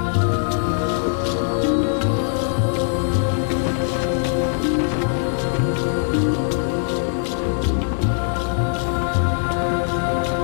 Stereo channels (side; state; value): right; silent; 65 dB below the other